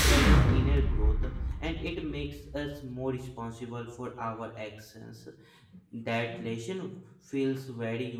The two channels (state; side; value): identical; both; correlation 1.00